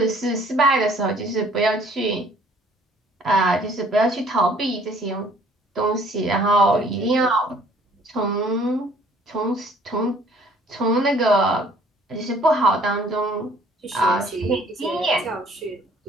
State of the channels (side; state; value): both; normal; correlation 0.58